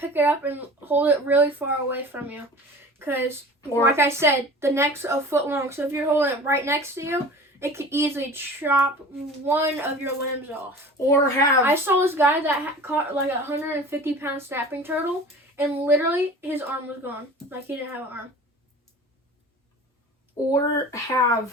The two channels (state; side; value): normal; both; correlation 0.40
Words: it up and hold it really far away from you. Because, like I said, the neck's a foot long. So if you're holding it right next to you, it could easily chop one of your limbs off. Or have I saw this guy that caught like a 150-pound snapping turtle, and literally his arm was gone. Like he didn't have an arm.